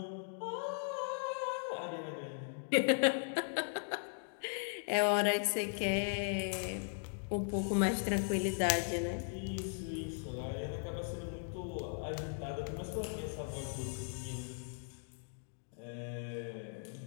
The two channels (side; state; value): right; silent; digital silence